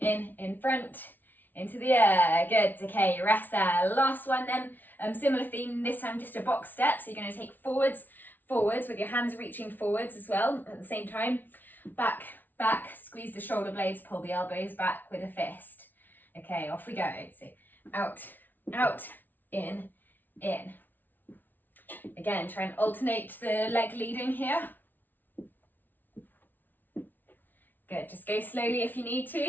front, into the air. Good. Okay, rest there. Last one then. Similar theme, this time just a box step. So you're going to take forwards with your hands reaching forwards as well at the same time. Back, squeeze the shoulder blades, pull the elbows back with a fist. Okay, off we go. So out, out, in. Again, try and alternate the leg leading here. Good, just go slowly if you need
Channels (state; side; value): late; right; 0.087 ms